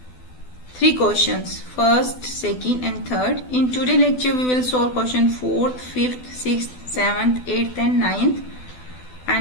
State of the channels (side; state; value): right; late; 12 ms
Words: 3 questions, first, second and third. In today's lecture we will solve question 4th, 5th, 6th, 7th, 8th and 9th,